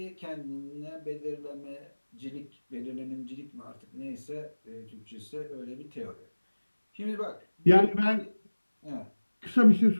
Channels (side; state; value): both; inverted; correlation -1.00